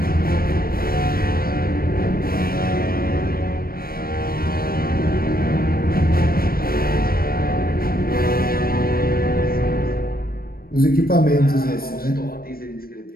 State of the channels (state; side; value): late; right; 0.43 ms